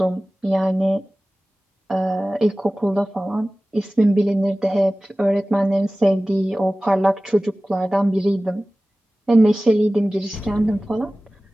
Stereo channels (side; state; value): both; normal; correlation 0.97